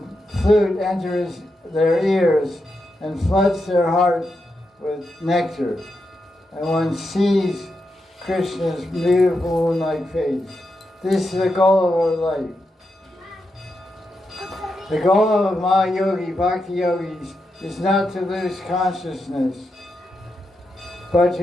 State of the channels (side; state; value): both; normal; correlation 0.86